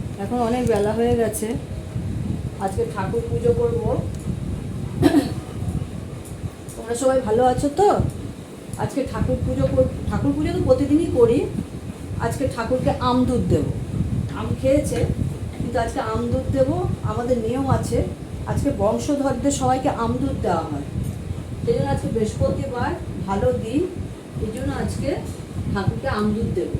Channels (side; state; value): both; identical; correlation 1.00